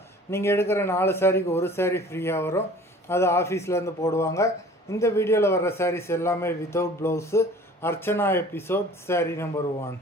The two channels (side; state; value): both; normal; correlation 0.47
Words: நீங்கள் எடுக்கிற 4 சாரிக்கு ஒரு சாரீ ஃப்ரீயாக வரும். அது ஆஃபீஸ்லேருந்து போடுவாங்க. இந்த வீடியோவில் வர்ற சாரீஸ் எல்லாமே without blouse. Archana episode sari number 1.